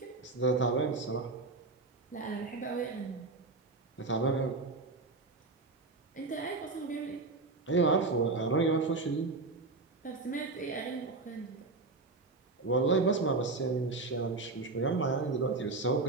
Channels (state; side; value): quieter; left; 3.6 dB